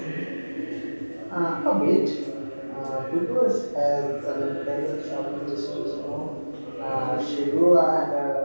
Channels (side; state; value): both; inverted; correlation -1.00